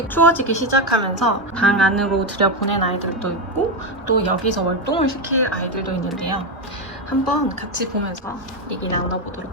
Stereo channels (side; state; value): both; normal; correlation 0.10